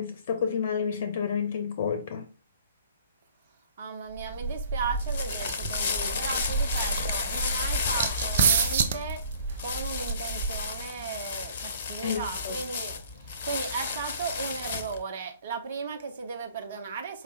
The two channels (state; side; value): inverted; both; correlation -0.52